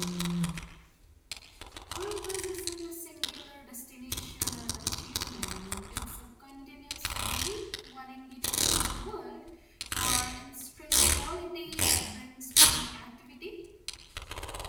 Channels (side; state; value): both; identical; correlation 1.00